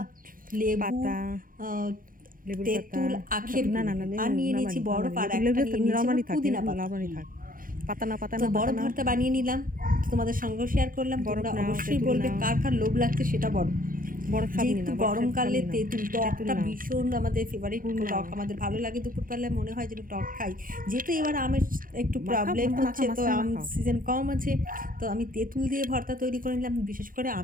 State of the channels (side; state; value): left; late; 0.40 ms